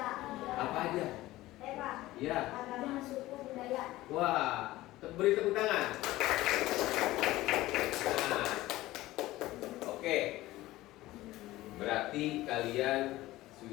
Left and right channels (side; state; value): right; quieter; 17.2 dB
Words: Apa aja? Ya. Agama, suku, budaya. Wah, beri tepuk tangan. Nah, oke. Berarti kalian